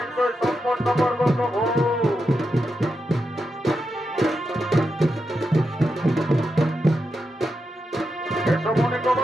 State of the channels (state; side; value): normal; both; correlation 0.86